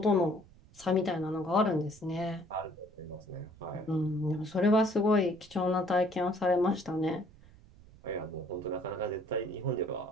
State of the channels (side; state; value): right; noise; rumble, 24 dB below the sound